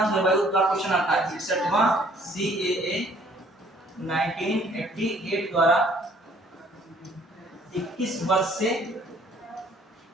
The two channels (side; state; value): both; normal; correlation 0.59